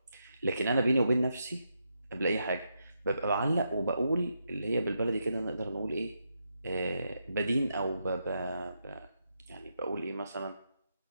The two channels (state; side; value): inverted; both; correlation -0.82